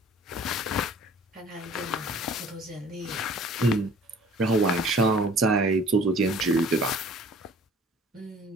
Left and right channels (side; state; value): both; normal; correlation 0.50